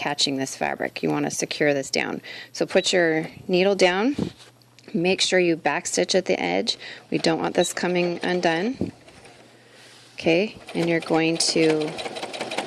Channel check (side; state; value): both; identical; correlation 1.00